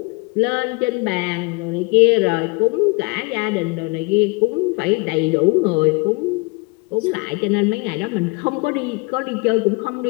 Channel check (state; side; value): quieter; right; 27.9 dB